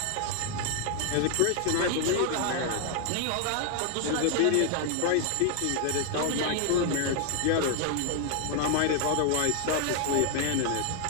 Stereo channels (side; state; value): both; different; correlation 0.00